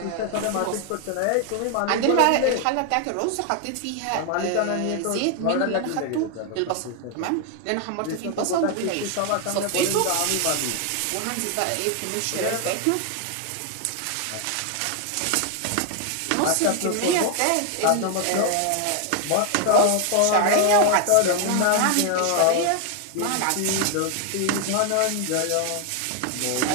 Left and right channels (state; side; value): different; both; correlation 0.01